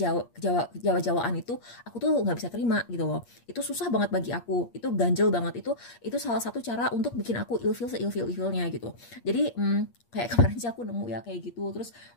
itu, aku tuh nggak bisa terima gitu loh. Itu susah banget bagi aku, itu ganjel banget. Itu salah satu cara untuk bikin aku ilfil seilfil-ilfilnya gitu. Jadi kayak kemarin sih aku nemu ya kayak gitu, terus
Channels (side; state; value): right; late; 8.5 ms